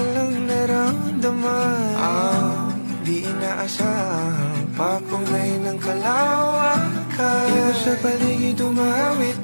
lang naramdaman. Di inaasahang papungay ng kalawakan. Ikaw sa paligid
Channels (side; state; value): both; inverted; correlation -1.00